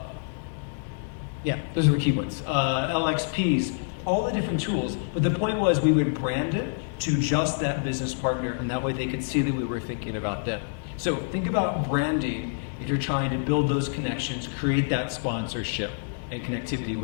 those are the key ones. LXPs, all the different tools. But the point was we would brand it to just that business partner, and that way they could see that we were thinking about them. So think about branding if you're trying to build those connections, create that sponsorship and connectivity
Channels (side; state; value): right; silent; digital silence